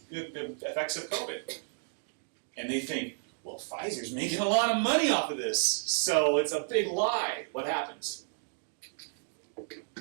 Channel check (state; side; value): silent; left; digital silence